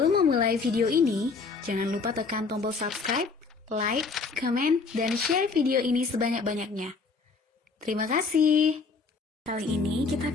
memulai video ini, jangan lupa tekan tombol subscribe, like, comment, dan share video ini sebanyak-banyaknya. Terima kasih. Kali ini kita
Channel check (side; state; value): right; quieter; 4.5 dB